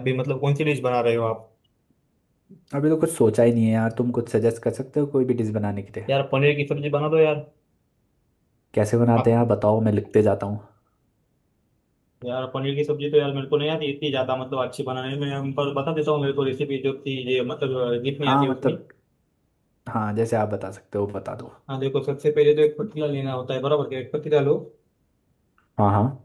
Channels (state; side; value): identical; both; correlation 1.00